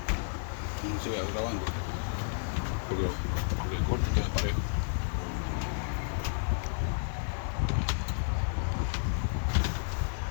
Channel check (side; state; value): right; silent; 57 dB below the other